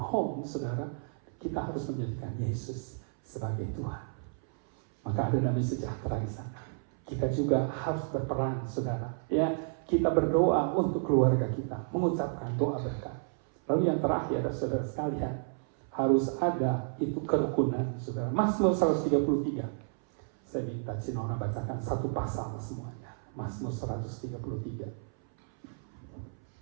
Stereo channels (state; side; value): silent; left; 57 dB below the other